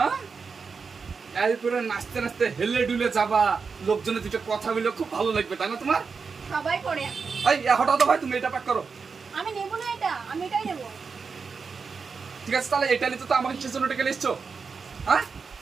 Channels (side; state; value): left; quieter; 5.2 dB